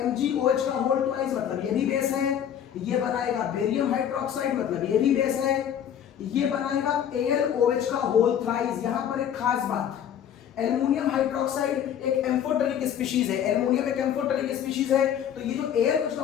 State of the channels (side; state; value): right; quieter; 9.4 dB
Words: MgOH का होल ट्वाइस, मतलब ये भी बेस है। ये बनाएगा बेरियम हाइड्रोक्साइड, मतलब ये भी बेस है। ये बनाएगा AlOH का होल थ्राइस। यहां पर एक खास बात, एल्युमिनियम हाइड्रोक्साइड एक एम्फोटेरिक स्पीशीज है, एल्युमिनियम एक एम्फोटेरिक स्पीशीज है। तो ये जो AlOH का